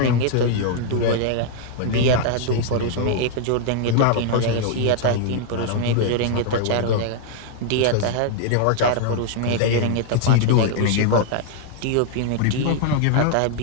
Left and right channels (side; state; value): both; different; correlation 0.00